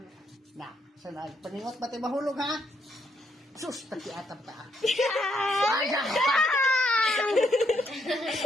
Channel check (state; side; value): normal; both; correlation 0.75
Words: Na, sana paningot ba't ay mahulog, ha? Sus, takiatam ta.